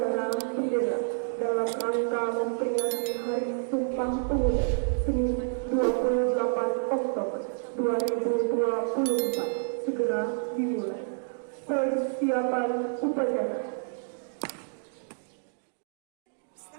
bendera dalam rangka memperingati Hari Sumpah Pemuda Senin 28 Oktober 2024 segera dimulai. Persiapan upacara.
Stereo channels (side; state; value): left; silent; digital silence